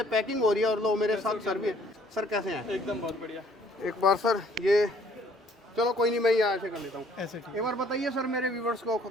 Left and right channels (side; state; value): both; normal; correlation 0.60